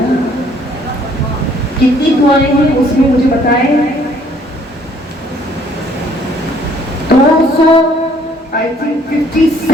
کتنی دعائیں ہیں اس میں مجھے بتائیں؟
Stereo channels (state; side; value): normal; both; correlation 0.61